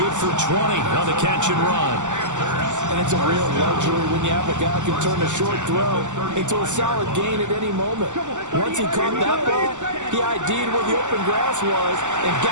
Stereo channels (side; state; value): left; late; 0.85 ms